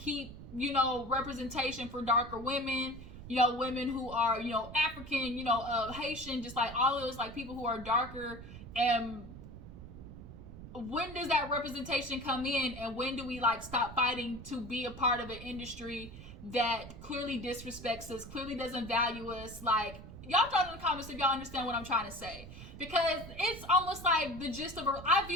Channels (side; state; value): right; noise; rumble, 13 dB below the sound